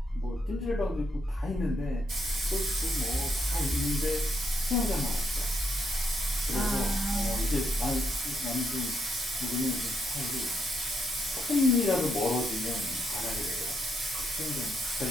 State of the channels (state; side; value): normal; both; correlation 0.78